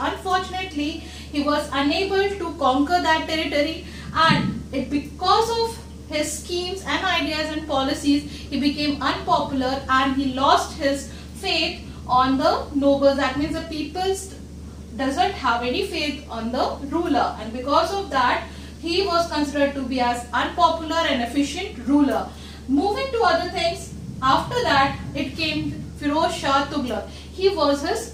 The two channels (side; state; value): both; identical; correlation 1.00